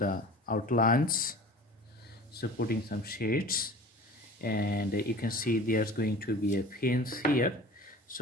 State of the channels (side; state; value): both; normal; correlation 0.41